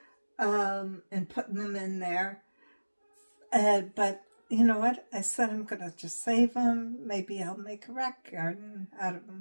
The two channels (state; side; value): inverted; both; correlation -1.00